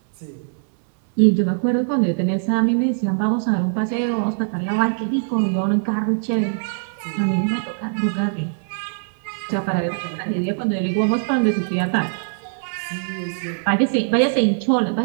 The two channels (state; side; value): silent; left; digital silence